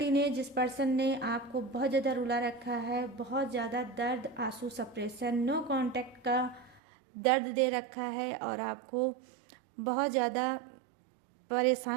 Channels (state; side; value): drops out; left; at 6.8 s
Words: ने, जिस पर्सन ने आपको बहुत ज़्यादा रुला रखा है, बहुत ज़्यादा दर्द, आंसू, सप्रेशन, नो कांटेक्ट का दर्द दे रखा है और आपको बहुत ज़्यादा